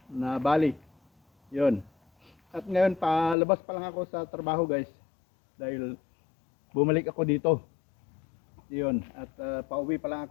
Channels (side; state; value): right; drops out; at 3.4 s